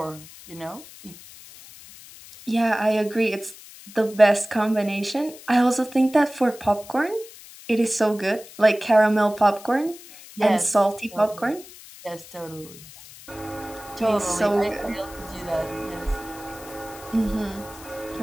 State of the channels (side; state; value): left; noise; hiss, 18 dB below the sound